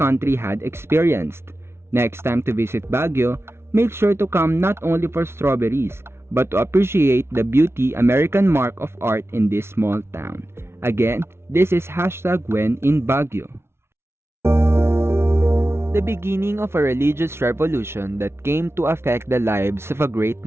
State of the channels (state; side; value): late; left; 0.12 ms